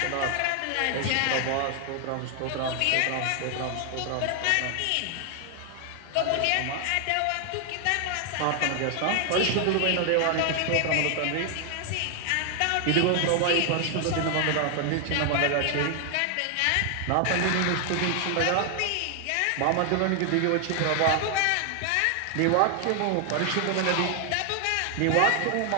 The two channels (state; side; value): different; both; correlation 0.00